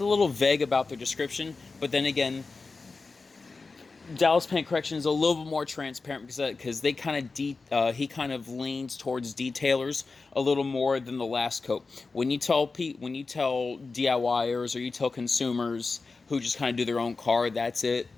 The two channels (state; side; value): quieter; right; 4.1 dB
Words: a little vague about their description, but then again, Dallas Paint Correction is a little bit more transparent because they he kind of leans towards detailers a little more than the last coat. When you tell DIYers or you tell consumers who just kind of do their own car, that's it.